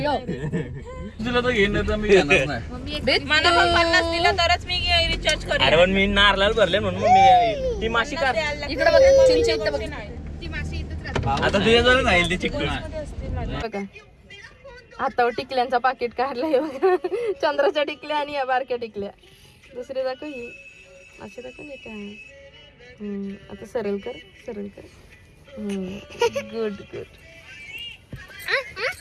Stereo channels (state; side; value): identical; both; correlation 1.00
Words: तुला तर घेणार तर मी घेणार नाही. मला पण 50 दिलं तरच मी रिचार्ज करेन. अरे पण मी नारळाला भरले म्हणून मी ती माशी काढ. इकडे बघ चिंची इथं बघ. आता तुझ्या जवळ राहील ती चिकटून. बघा हातावर टिकल्यांचा पाकिट काढलाय बघा. चंद्राच्या टिकल्या आणि या बारक्या टिकल्या. दुसरी दाखव ही अशी दाखव नाही काय. आता सरळ कर. गुड